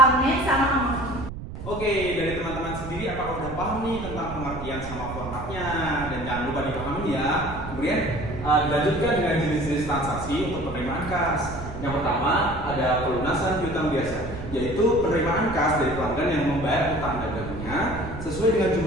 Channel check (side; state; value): right; noise; rumble, 10 dB below the sound